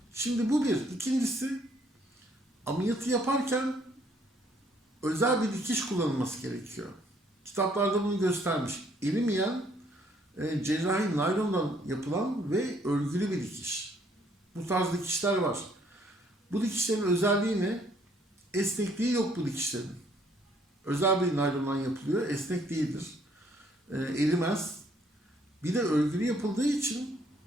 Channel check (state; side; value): normal; both; correlation 0.65